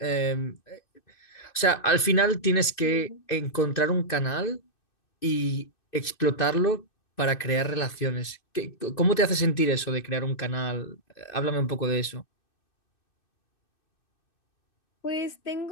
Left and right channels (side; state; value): right; late; 2.6 ms